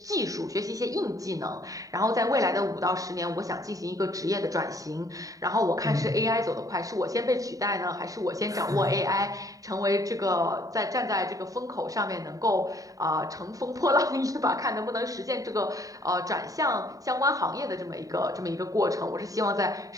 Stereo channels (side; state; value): left; late; 0.17 ms